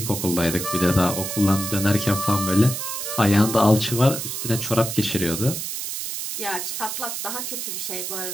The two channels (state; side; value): noise; right; hiss, 5 dB below the sound